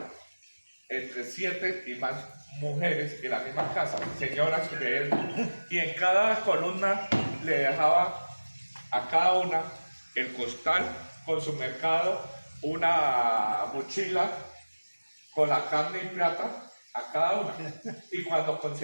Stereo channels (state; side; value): inverted; both; correlation -1.00